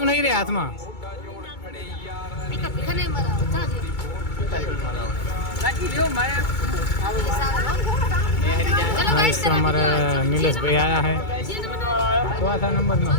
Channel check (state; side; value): late; right; 2.2 ms